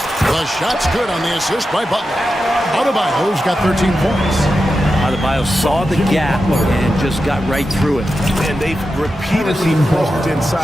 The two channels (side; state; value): both; normal; correlation 0.90